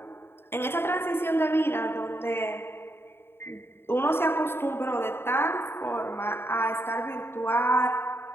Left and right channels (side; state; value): right; late; 0.11 ms